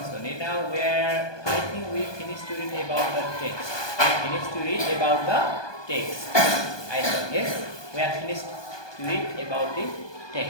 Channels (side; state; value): right; late; 1.2 ms